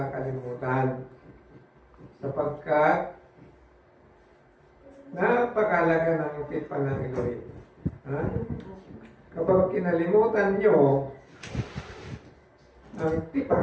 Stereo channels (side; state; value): both; identical; correlation 1.00